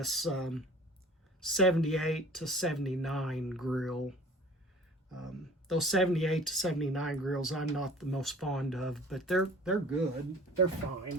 78 to 79 grill. Those 78 to 79 grills I'm not the most fond of, but they're good. They're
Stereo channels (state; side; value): normal; both; correlation 0.46